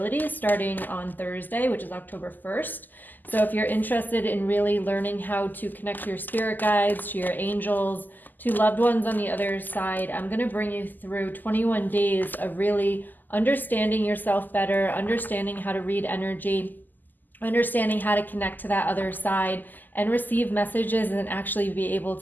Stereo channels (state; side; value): late; right; 0.086 ms